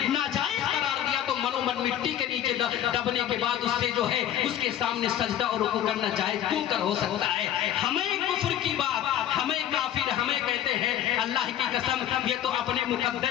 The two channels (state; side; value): quieter; right; 11.2 dB